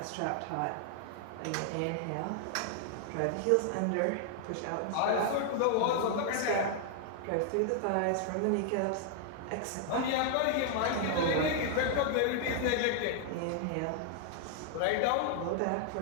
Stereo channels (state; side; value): different; both; correlation 0.00